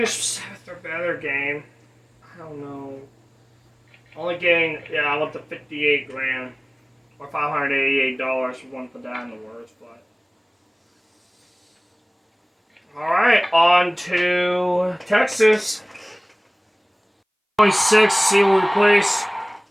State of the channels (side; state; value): both; identical; correlation 1.00